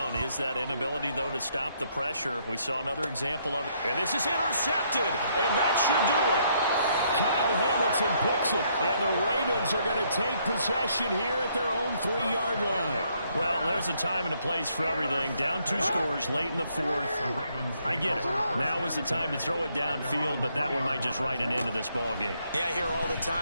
is that inability, though, to stop the pressure. We saw another example of it. And this is intercepted, and that should do it. Kyle Hamilton picks it, and the Ravens are going to take possession here at their own 3-yard line. Well, there's a time and a place for everything. Down 2 scores late in the 4th. I get it. Now is the time to throw it downfield, but that one might just write an end to this ball game. Yeah, I hear all the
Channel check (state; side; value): inverted; both; correlation -0.71